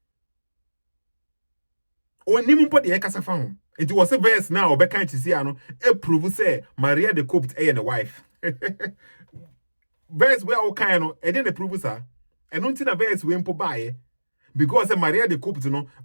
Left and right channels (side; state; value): both; inverted; correlation -1.00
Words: Onim po de ekasa fa hum. It was a verse now, or can't you see, prove say Mariyah the cooked and the wife. Verse where all kind of, and then the prove her. And don't think a verse we impo buy because Mariyah the cooked,